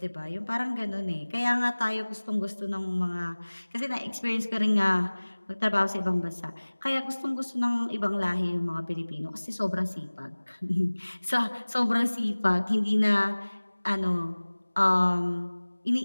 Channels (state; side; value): inverted; both; correlation -1.00